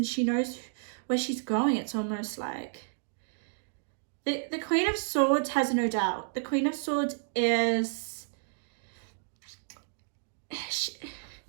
she knows where she's going. It's almost like the Queen of Swords has no doubt. The Queen of Swords is...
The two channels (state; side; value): silent; left; digital silence